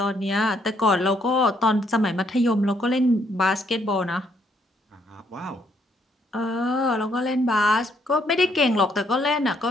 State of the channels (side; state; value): both; normal; correlation 0.70